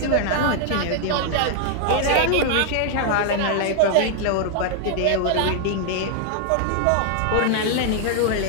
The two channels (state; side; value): different; both; correlation 0.00